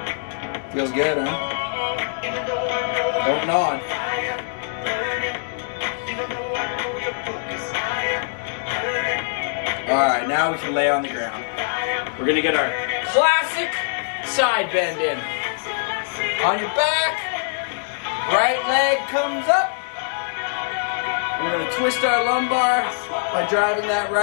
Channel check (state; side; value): silent; right; 63 dB below the other